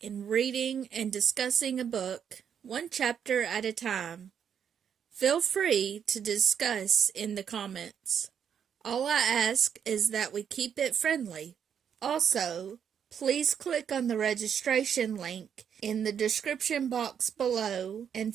in reading and discussing a book, one chapter at a time. Feel free to discuss in the comments. All I ask is that we keep it friendly. Also, please click on the registration link in the description box below and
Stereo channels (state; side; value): quieter; left; 8.1 dB